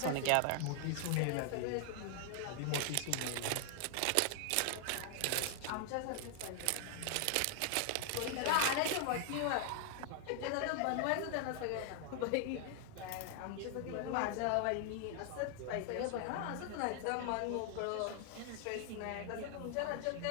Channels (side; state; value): both; different; correlation 0.00